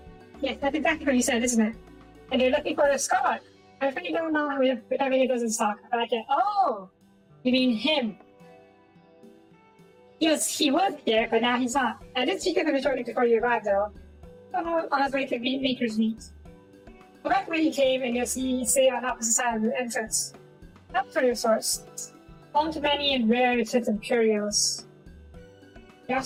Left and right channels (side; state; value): both; identical; correlation 1.00